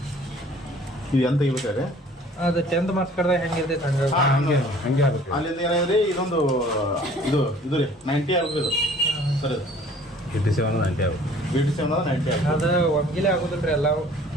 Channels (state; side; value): normal; both; correlation 0.52